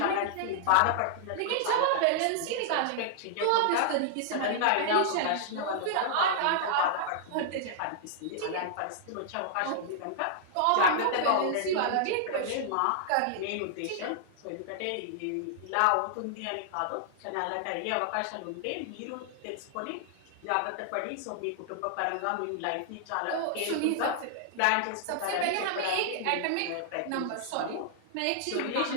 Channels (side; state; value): both; different; correlation -0.01